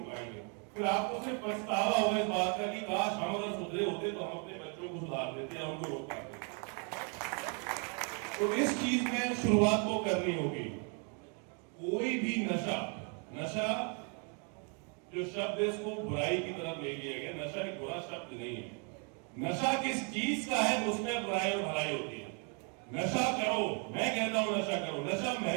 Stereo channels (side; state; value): left; quieter; 38.1 dB